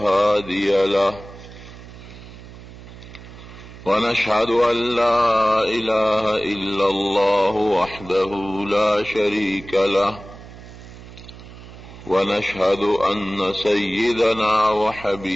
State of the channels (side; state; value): right; noise; hum, 17 dB below the sound